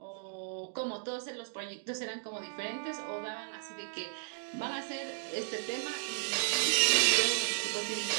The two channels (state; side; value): silent; left; digital silence